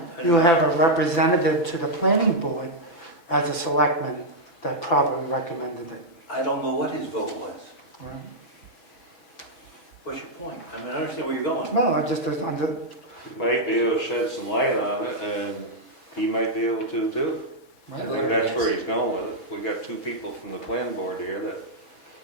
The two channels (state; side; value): late; right; 6.0 ms